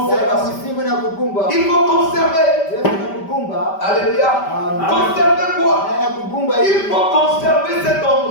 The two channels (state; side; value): late; right; 5.1 ms